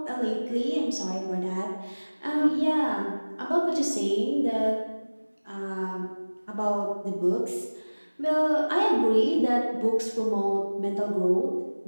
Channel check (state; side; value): inverted; both; correlation -1.00